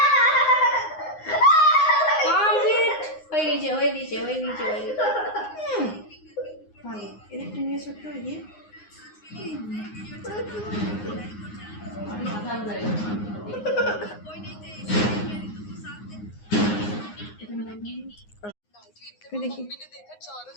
কমপ্লিট হয়ে গেছে হয়ে গেছে হয়ে গেছে হয়ে গেছে। ভালো, এদিকটা নিয়ে ছোট্ট এগিয়ে।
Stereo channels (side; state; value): right; late; 9.6 ms